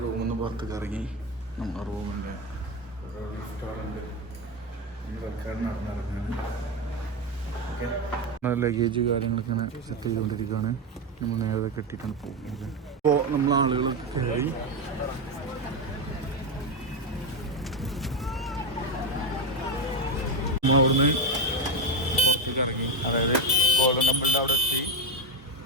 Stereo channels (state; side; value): normal; both; correlation 0.12